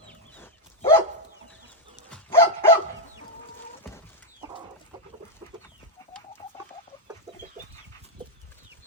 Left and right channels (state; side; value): normal; both; correlation 0.02